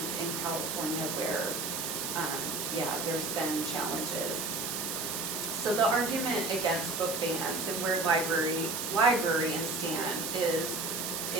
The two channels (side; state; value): right; noise; hiss, 3 dB below the sound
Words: in California where, there's been challenges. So the argument against book bans and where librarians stand